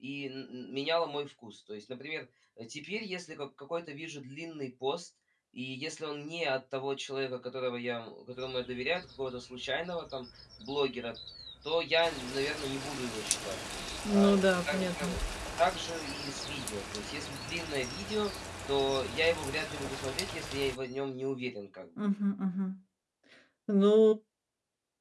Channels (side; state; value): both; identical; correlation 1.00